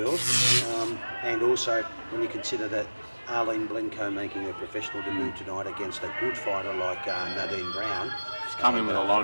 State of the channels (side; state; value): both; inverted; correlation -1.00